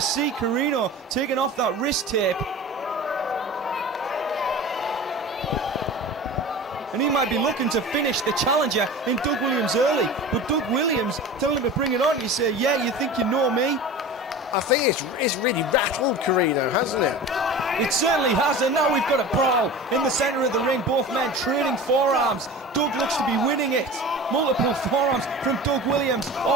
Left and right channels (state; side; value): normal; both; correlation 0.35